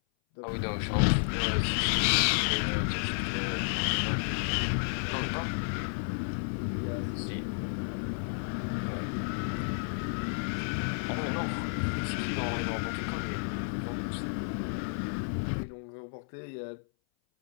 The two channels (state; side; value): silent; right; 57 dB below the other